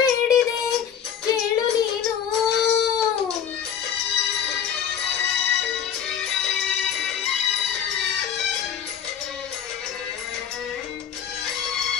ಬೇಡಿದೆ ಕೇಳು ನೀನು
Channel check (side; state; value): right; quieter; 8.4 dB